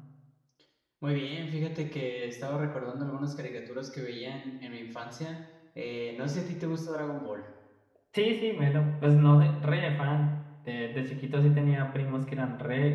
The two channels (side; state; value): both; identical; correlation 1.00